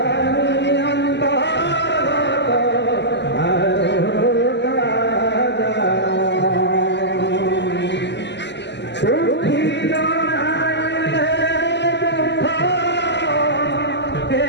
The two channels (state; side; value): late; right; 0.51 ms